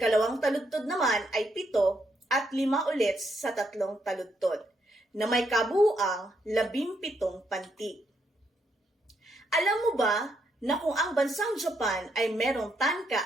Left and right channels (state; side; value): normal; both; correlation 0.77